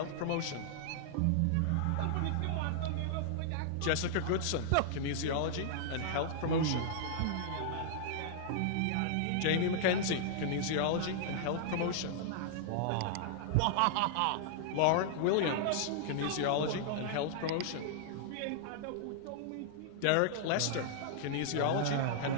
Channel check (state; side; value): different; both; correlation -0.01